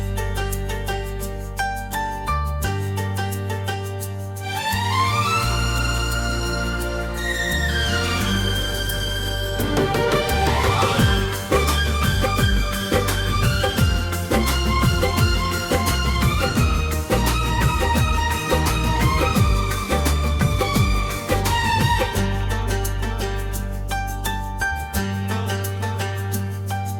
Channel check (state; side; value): identical; both; correlation 1.00